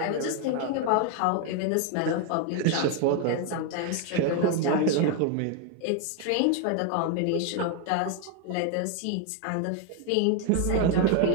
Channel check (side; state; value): both; different; correlation 0.01